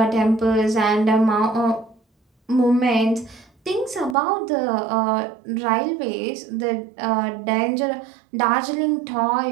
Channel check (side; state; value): left; drops out; at 4.2 s